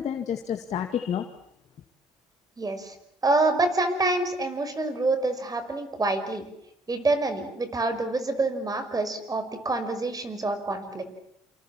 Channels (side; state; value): both; normal; correlation 0.62